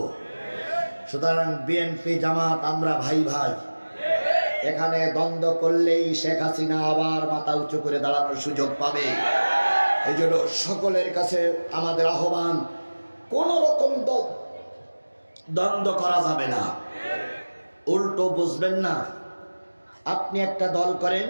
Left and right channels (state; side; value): inverted; both; correlation -1.00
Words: সুতরাং বিএনপি জামাত আমরা ভাই ভাই। এখানে দ্বন্দ্ব করলেই শেখ হাসিনা আবার মাথা উঁচু করে দাঁড়ানোর সুযোগ পাবে। এই জন্য সকলের কাছে আমাদের আহ্বান, কোন রকম দ্বন্দ্ব করা যাবে না। উল্টো বুঝবেন না। আপনি একটা দল করেন,